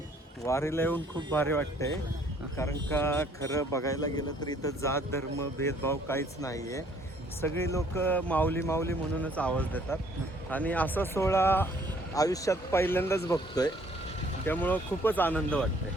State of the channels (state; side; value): normal; both; correlation 0.61